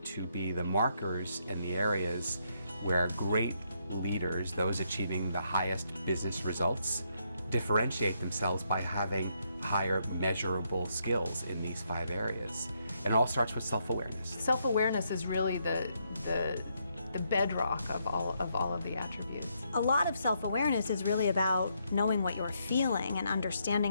to be the markers and the areas where great leaders, those achieving the highest business results, differentiate themselves by having higher measurable skills in these 5 areas. And it all starts with self-awareness. Self-awareness is really the bedrock of all of the attributes. A lot of self-awareness is really about knowing what you're feeling and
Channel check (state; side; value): inverted; both; correlation -0.76